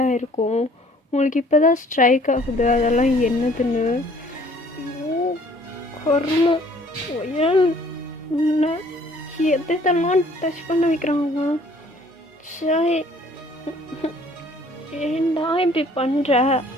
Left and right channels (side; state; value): both; normal; correlation 0.57